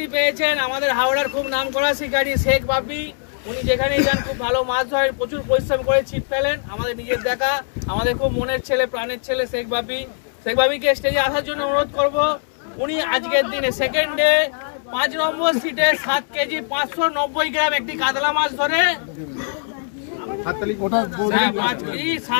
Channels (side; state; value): right; silent; digital silence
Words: পেয়েছেন আমাদের হাওড়ার খুব নামকরা শিকারী শেখ বাপি। উনি যেখানে যান খুব ভালো মাছ ধরেন, প্রচুর পরিশ্রম করে ছিপ ফেলেন। আমাদের নিজের দেখা, আমাদের খুব মনের ছেলে, প্রাণের ছেলে শেখ বাপিকে স্টেজে আসার জন্য অনুরোধ করব। উনি আজকের দিনে সেকেন্ড ডে 5 নম্বর সিটে 7 কেজি 590 গ্রাম একটি কাতলা মাছ ধরে